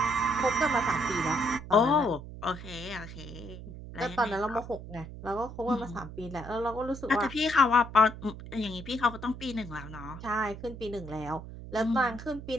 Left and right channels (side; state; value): right; noise; hum, 12 dB below the sound